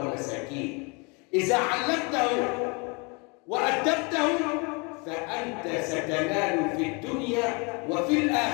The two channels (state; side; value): quieter; right; 31.1 dB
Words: إذا علمته وأدبته فأنت ستنال في الدنيا وفي